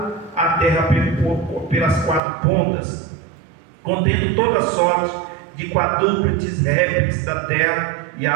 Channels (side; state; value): left; drops out; at 2.2 s